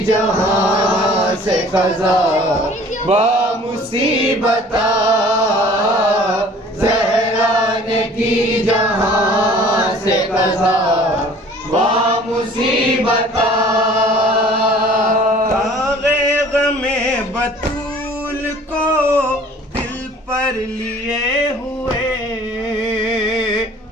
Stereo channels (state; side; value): normal; both; correlation 0.50